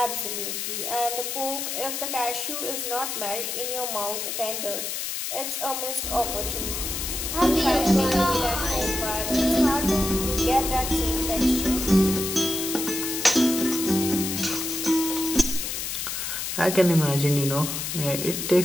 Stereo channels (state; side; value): noise; left; hiss, 3 dB below the sound